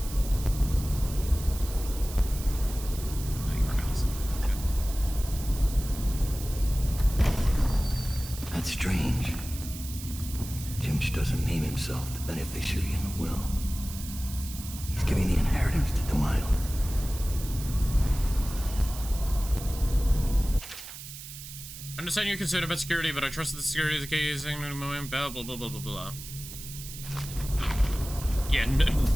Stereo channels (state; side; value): noise; right; hiss, 12 dB below the sound